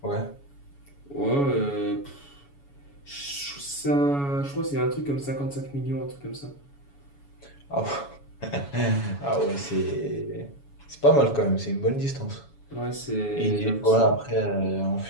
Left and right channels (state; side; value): late; right; 7.1 ms